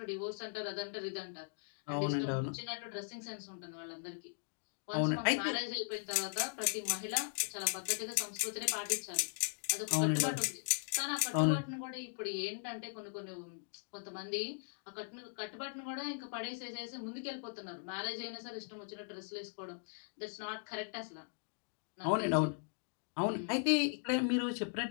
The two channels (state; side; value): silent; right; digital silence